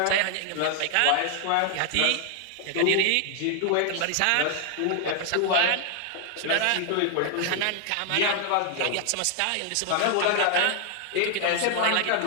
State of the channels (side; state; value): both; different; correlation 0.00